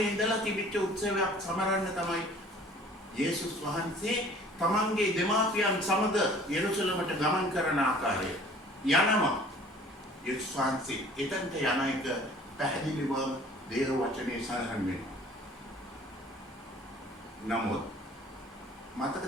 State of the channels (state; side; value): normal; both; correlation 0.50